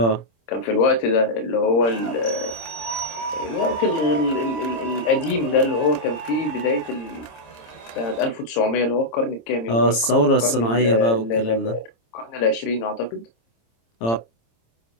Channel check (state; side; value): late; right; 26 ms